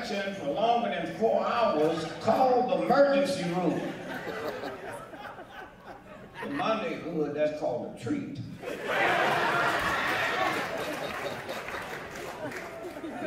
for longer than 4 hours, call the emergency room. In my neighborhood, that's called a treat.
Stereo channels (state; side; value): identical; both; correlation 1.00